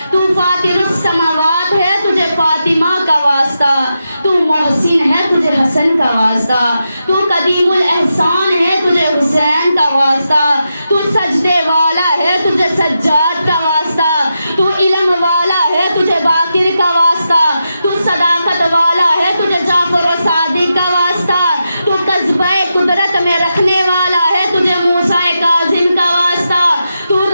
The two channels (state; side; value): inverted; both; correlation -0.87